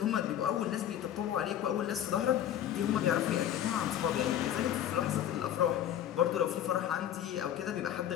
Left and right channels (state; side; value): quieter; right; 10.9 dB